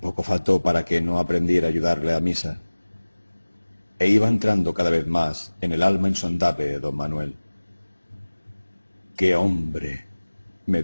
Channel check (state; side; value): inverted; both; correlation -1.00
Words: faltó para que no aprendiera a ayudarle a misa. E iba entrando cada vez más en el alma insondable de don Manuel. ¡Qué hombre!, me